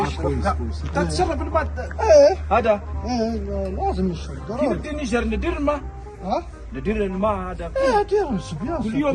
يشرب كويس كاع. كويس. انت تشرب الماء ايه هذا. ايه لازم يشرب كيف ضروري. بدي نجر ندير الماء؟ ها؟ ندير الماء هذا ايه دير الصبيان كل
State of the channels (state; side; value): identical; both; correlation 1.00